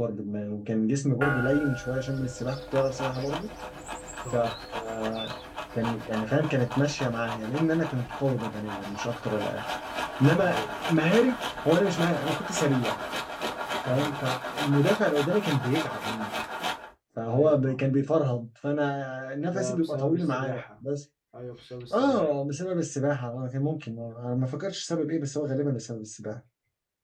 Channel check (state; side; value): identical; both; correlation 1.00